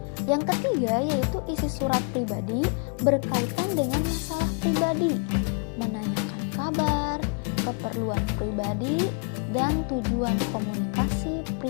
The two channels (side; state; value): right; quieter; 38.1 dB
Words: Yang ketiga yaitu isi surat pribadi berkaitan dengan masalah pribadi, menanyakan kabar, keperluan pribadi, dan tujuan komunikasi